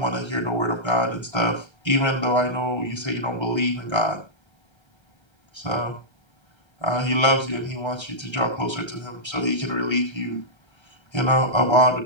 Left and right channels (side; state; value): right; late; 1.3 ms